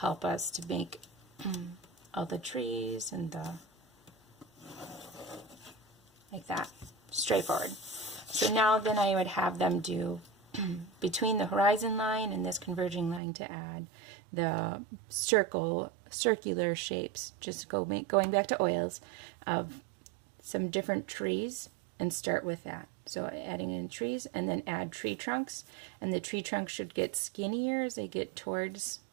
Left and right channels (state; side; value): drops out; left; at 13.2 s